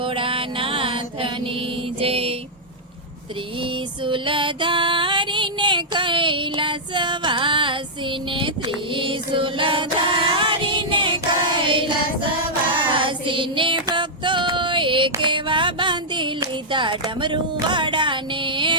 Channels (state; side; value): normal; both; correlation -0.08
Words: જય। ત્રિશુલધારીને કૈલાસવાસીને, ત્રિશુલધારીને કૈલાસવાસીને ભક્તોએ કેવા બાંધી લીધા ડમરુવાડાને,